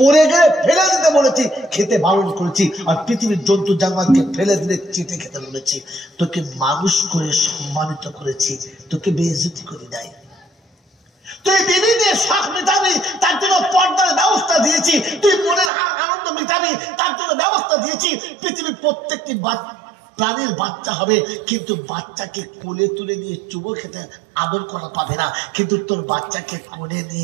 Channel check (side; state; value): left; drops out; at 15.7 s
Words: গেলে ফেলে দিতে বলেছি, খেতে বারণ করেছি। আর পৃথিবীর জন্তু জানোয়ারকে ফেলে দিলে চেটে খেতে বলেছি। তোকে মানুষ করে সম্মানিত করেছি, তোকে বেইজ্জতি করি নাই। তুই বিবিদের শখ মেটাবি, তার জন্য পর্দার ব্যবস্থা দিয়েছি। তুই মনের আনন্দ মেটাবি, তার জন্য ব্যবস্থা দিয়েছি। পৃথিবীর প্রত্যেকটি প্রাণীর বাচ্চা হবে, কিন্তু বাচ্চাকে কোলে তুলে নিয়ে চুমো খেতে আদর করা পাবে না, কিন্তু তোর বাচ্চাকে কোলে